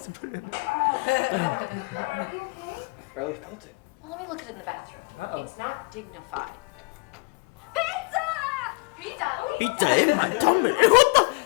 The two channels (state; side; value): quieter; right; 28.6 dB